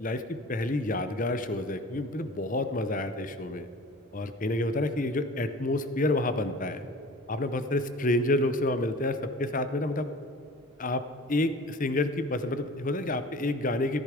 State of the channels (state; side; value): normal; both; correlation 0.42